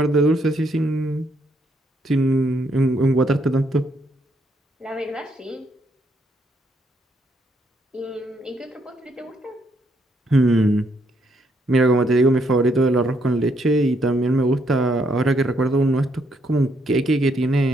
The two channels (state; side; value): normal; both; correlation 0.73